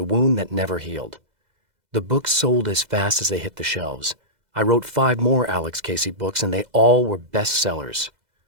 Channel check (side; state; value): left; late; 2.0 ms